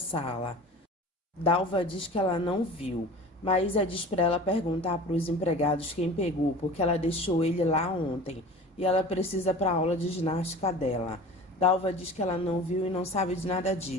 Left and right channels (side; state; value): both; normal; correlation 0.38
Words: Dalva diz que ela não viu. Maísa diz para ela perguntar para os empregados quem pegou, porque ela deixou ele lá ontem e ela precisa para a aula de ginástica dela. Dalva diz que ela não viu e não sabe de nada